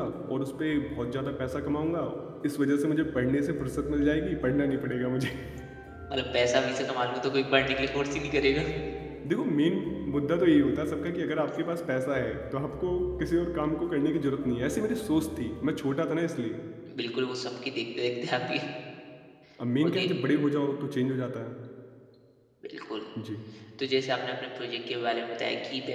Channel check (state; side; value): identical; both; correlation 1.00